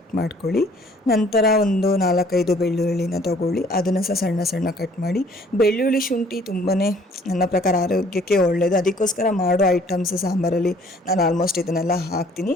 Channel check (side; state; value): both; normal; correlation 0.57